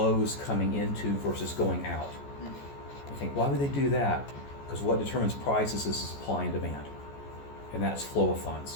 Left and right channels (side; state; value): right; late; 14 ms